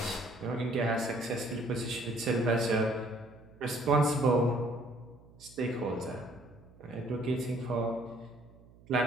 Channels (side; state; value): right; noise; hum, 24 dB below the sound